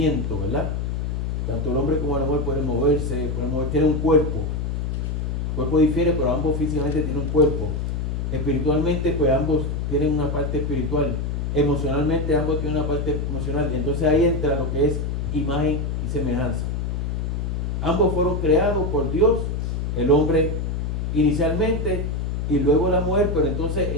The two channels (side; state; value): left; noise; hum, 1 dB below the sound